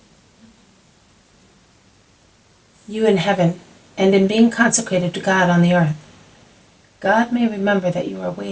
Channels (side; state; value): both; identical; correlation 1.00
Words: you in heaven, and in being consecrated to God on the earth. God may remember that you are